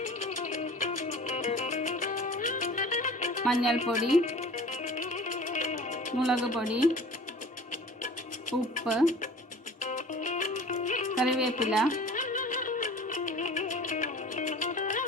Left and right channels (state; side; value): normal; both; correlation 0.43